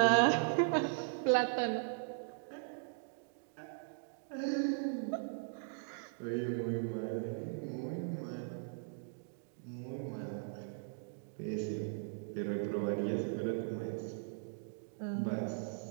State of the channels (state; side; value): silent; left; digital silence